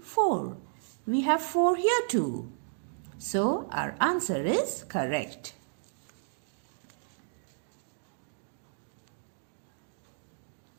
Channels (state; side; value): silent; left; digital silence